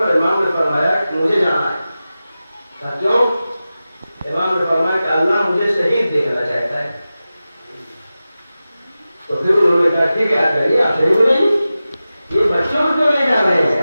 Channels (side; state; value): both; inverted; correlation -0.94